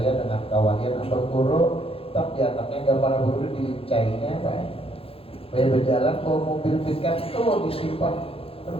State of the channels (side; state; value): right; late; 0.27 ms